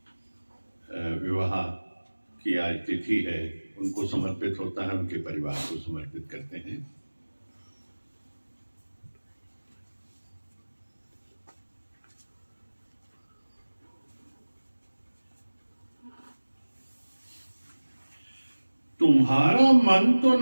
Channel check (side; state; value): both; inverted; correlation -1.00